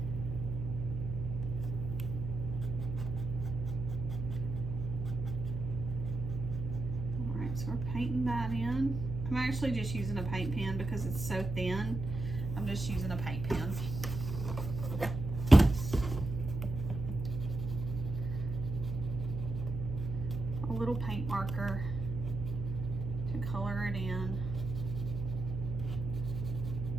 So we're painting that in. I'm actually just using a paint pen because it's so thin. I'm just using a paint pen. A little paint marker to color it in.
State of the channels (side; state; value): right; noise; hum, 5 dB below the sound